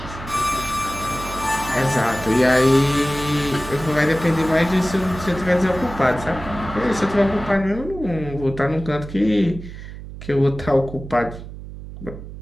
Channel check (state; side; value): noise; right; hum, 12 dB below the sound